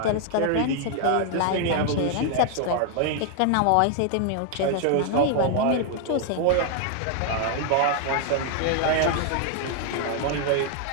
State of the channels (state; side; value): different; both; correlation 0.00